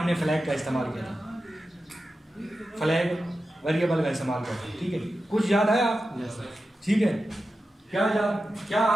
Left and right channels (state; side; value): normal; both; correlation 0.92